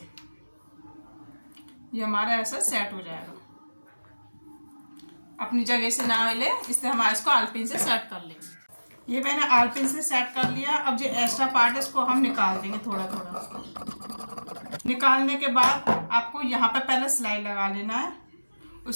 ये हमारा ऐसा सेट हो जाएगा। अपनी जगह से ना हिले, इससे हम इसको आर पिन से सेट कर लेंगे। ये मैंने आर पिन से सेट कर लिया। अब जो एक्स्ट्रा पार्ट है इसको हम निकाल देंगे थोड़ा थोड़ा। निकालने के बाद आपको यहाँ पे पहले सिलाई लगा लेना है,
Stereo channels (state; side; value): inverted; both; correlation -1.00